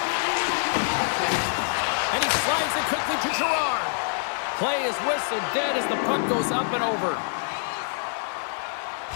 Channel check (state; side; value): silent; right; 61 dB below the other